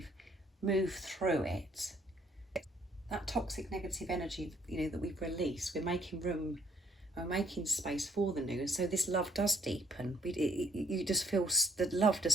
moved through it, that toxic negative energy, you know, that we've released, we're making room, we're making space for the new. And so this love does deepen. You just feel the love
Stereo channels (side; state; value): both; normal; correlation 0.65